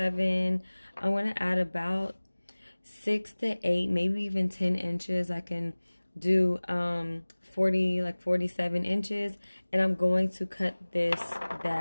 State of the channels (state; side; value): inverted; both; correlation -1.00